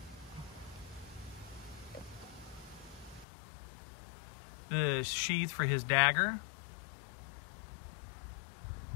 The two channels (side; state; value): right; drops out; at 3.2 s